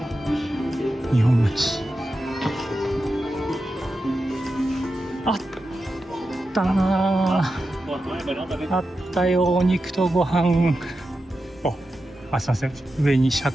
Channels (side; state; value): both; normal; correlation 0.90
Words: 日本町。あったなー。あったよ、お肉とご飯。すいません。上にシャ